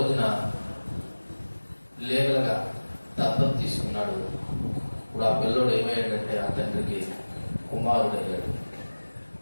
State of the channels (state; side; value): inverted; both; correlation -1.00